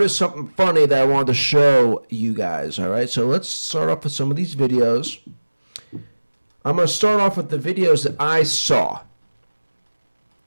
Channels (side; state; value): both; inverted; correlation -1.00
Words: something funny that I wanted to show you guys, all right? So let's start off with some of these videos. I'm going to start off with the videos that I saw,